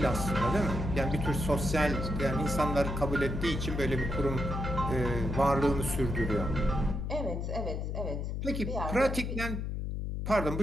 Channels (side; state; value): left; noise; hum, 3 dB below the sound